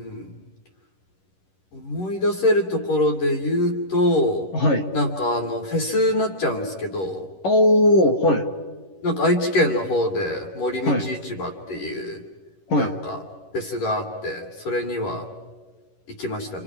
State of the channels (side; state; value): right; late; 11 ms